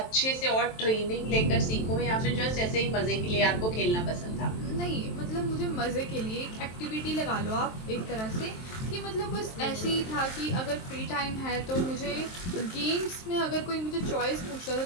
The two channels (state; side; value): late; right; 23 ms